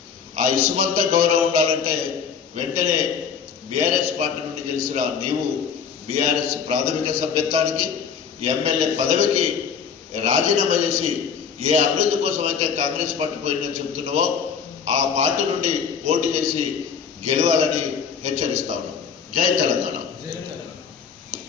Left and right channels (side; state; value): right; quieter; 6.7 dB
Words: ఆ ఇసుమంత గౌరవం ఉండాలంటే వెంటనే బీఆర్ఎస్ పార్టీ నుండి గెలిచిన నీవు బీఆర్ఎస్ ప్రాథమిక సభ్యత్వానికి ఎమ్మెల్యే పదవికి రాజీనామా చేసి ఏ అభివృద్ధి కోసం అయితే కాంగ్రెస్ పార్టీ పోయిందని చెబుతున్నావో ఆ పార్టీ నుండి పోటీ చేసి గెలవాలని హెచ్చరిస్తా ఉన్నాం. జై తెలంగాణ.